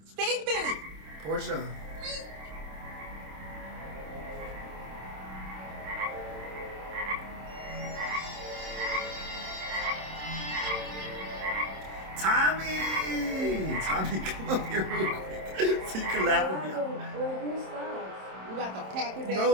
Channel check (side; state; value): left; late; 27 ms